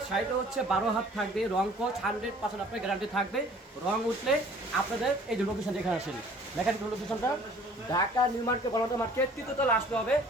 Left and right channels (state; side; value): normal; both; correlation 0.52